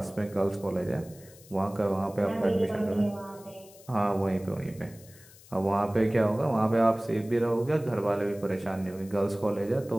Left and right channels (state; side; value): noise; left; hiss, 23 dB below the sound